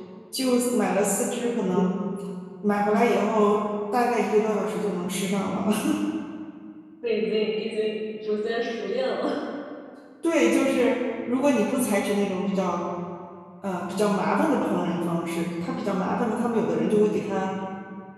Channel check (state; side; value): identical; both; correlation 1.00